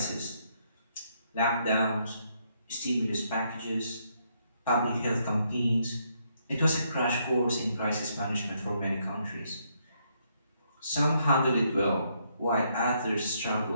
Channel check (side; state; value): both; inverted; correlation -0.74